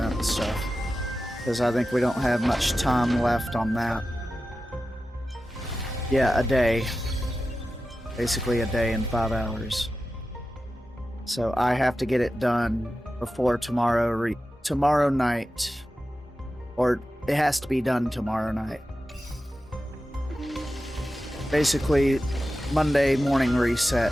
stuff. Because I think we don't have much time left on that. Yeah, a day. Basically a day and 5 hours. So I have to get it done before tomorrow night. Or it has to be done tomorrow night. Basically, Monday morning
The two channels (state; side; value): normal; both; correlation 0.93